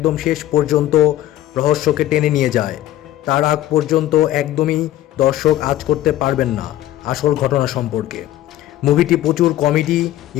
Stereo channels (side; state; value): right; quieter; 13.8 dB